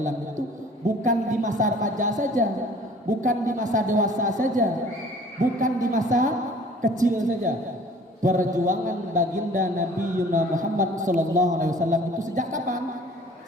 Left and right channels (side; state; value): both; normal; correlation 0.50